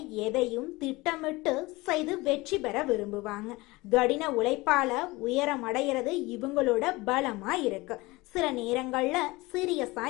எதையும் திட்டமிட்டு செய்து வெற்றி பெற விரும்புவாங்க. கடின உழைப்பால உயரம் அடைகிறது இவங்களோட பலமா இருக்கு. சில நேரங்கள்ல சீரியஸா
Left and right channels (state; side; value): quieter; right; 21.9 dB